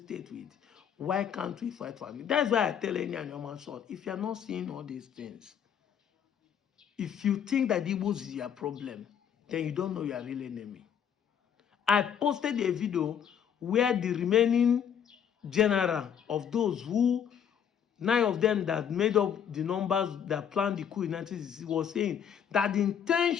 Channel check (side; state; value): right; quieter; 8.4 dB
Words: with. Why can't we fight for it? That's why I tell any Anyoma son, if you're not seeing all these things, if you think that Igbos is your problem, then you don't know your real enemy. I posted a video where the remaining general of those who, 9 of them that made up the numbers that planned the coup in 1960 was saying that the